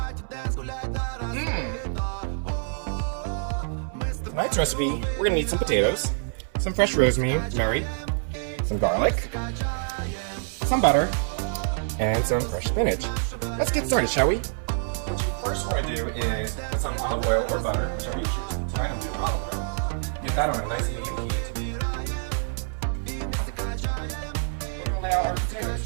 Tonight's recipe, we're going to need some potatoes, some fresh rosemary, some garlic, some butter, and some fresh spinach. Let's get started, shall we? What you first want to do is put some olive oil or butter, whichever you choose. Tonight I'm doing olive oil. Get that on a nice medium heat. We're going to lay out our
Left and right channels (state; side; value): silent; left; 61 dB below the other